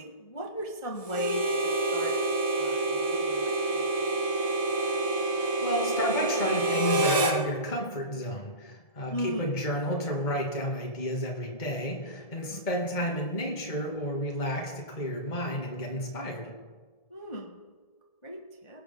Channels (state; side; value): late; right; 1.7 ms